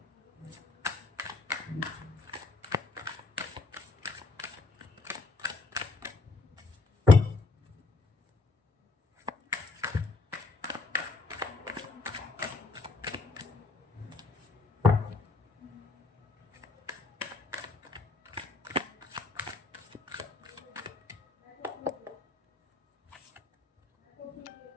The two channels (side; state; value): right; quieter; 3.8 dB